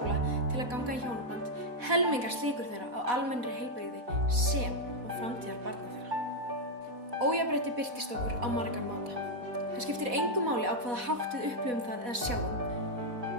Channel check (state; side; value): late; left; 4.1 ms